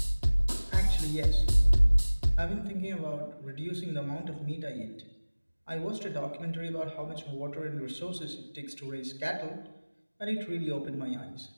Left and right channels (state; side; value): inverted; both; correlation -1.00